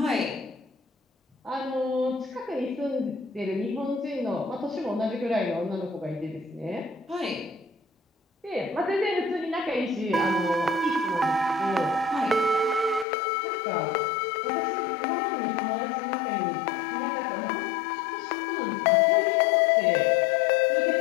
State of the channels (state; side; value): drops out; right; at 13.1 s